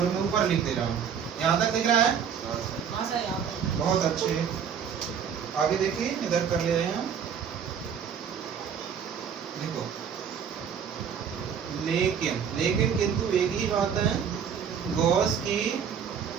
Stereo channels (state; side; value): quieter; left; 7.6 dB